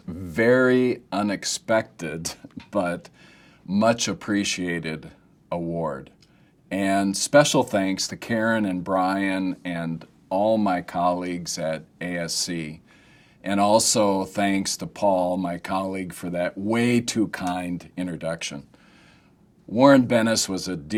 very unexpected but much appreciated award. And special thanks to Karen and Brian and all my colleagues at AESC. And also thanks to Paul, my colleague, for that way too kind introduction. Warren Bennis was a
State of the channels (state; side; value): identical; both; correlation 1.00